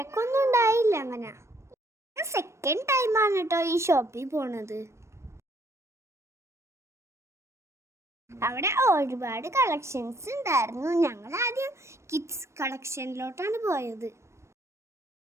ഉണ്ടായില്ല. അങ്ങനെ സെക്കൻഡ് ടൈമാണ് കേട്ടോ ഈ ഷോപ്പിൽ പോണത്. അവിടെ ഒരുപാട് കളക്ഷൻസ് ഉണ്ടായിരുന്നു. ഞങ്ങൾ ആദ്യം കിഡ്സ് കളക്ഷനിലോട്ടാണ് പോയത്.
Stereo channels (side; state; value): left; late; 0.13 ms